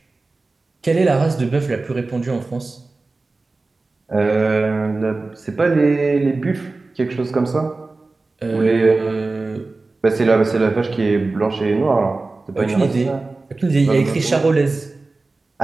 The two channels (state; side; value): quieter; left; 3.5 dB